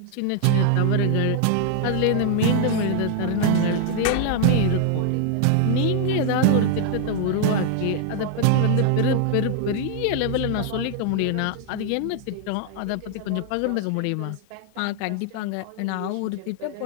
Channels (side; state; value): both; different; correlation 0.00